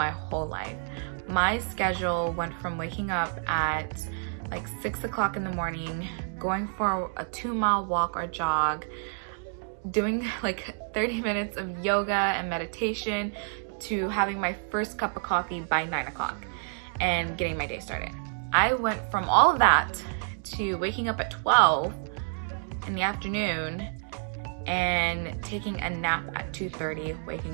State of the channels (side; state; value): left; silent; 59 dB below the other